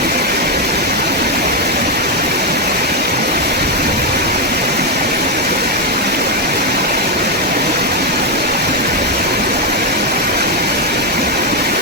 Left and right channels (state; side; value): normal; both; correlation 0.04